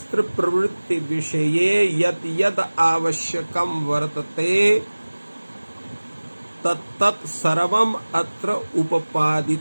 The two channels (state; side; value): inverted; both; correlation -1.00